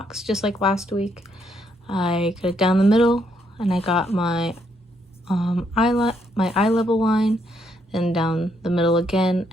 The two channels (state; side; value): normal; both; correlation 0.74